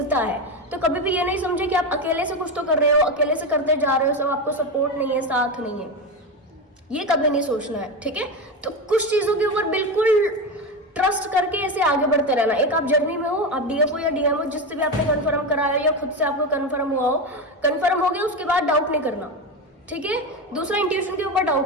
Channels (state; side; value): normal; both; correlation 0.17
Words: है। तो कभी भी ये नहीं समझे कि आप अकेले से कुछ तो कर रहे हो, अकेले से करते जा रहे हो, सब आपको सपोर्ट नहीं है, साथ नहीं है, ये कभी नहीं सोचना है, ठीक है। तो कुछ चीजों के ऊपर बिल्कुल ट्रस्ट करके ऐसे आगे बढ़ते रहना। एक आप जर्नी में हो, आप डीएफ हो या डीएम हो, जिससे भी आपने कंफर्म कराया या खुद से आपको कंफर्म हुआ हो, कंफर्म हो गया, उसके बाद डाउट नहीं करना, ठीक है। दूसरा, इंट्यूशन के ऊपर